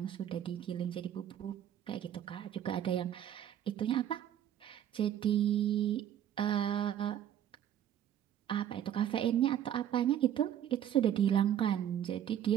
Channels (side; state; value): left; quieter; 10.5 dB